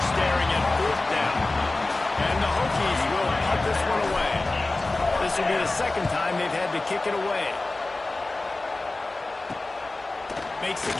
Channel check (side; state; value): right; quieter; 3.1 dB